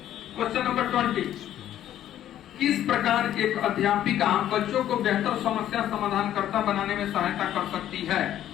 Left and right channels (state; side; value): quieter; right; 11.7 dB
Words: क्वेश्चन नंबर 20, किस प्रकार एक अध्यापिका बच्चों को बेहतर समस्या समाधानकर्ता बनाने में सहायता कर सकती है?